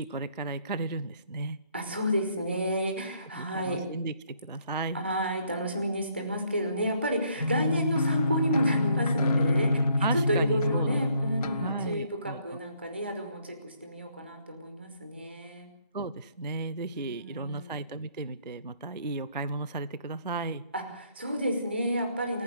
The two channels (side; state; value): both; inverted; correlation -0.67